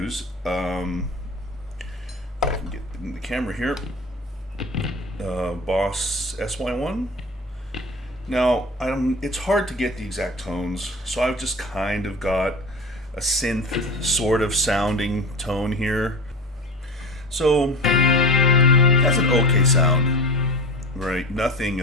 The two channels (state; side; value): normal; both; correlation 0.31